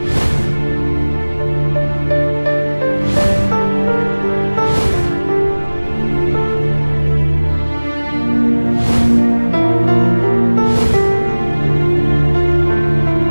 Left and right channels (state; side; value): inverted; both; correlation -1.00